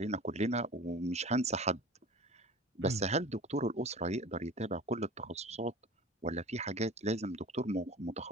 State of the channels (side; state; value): both; normal; correlation 0.38